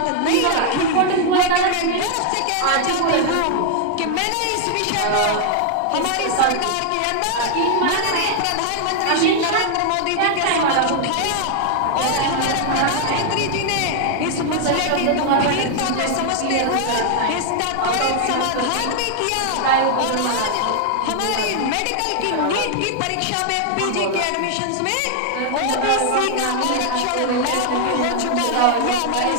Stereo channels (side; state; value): both; different; correlation 0.00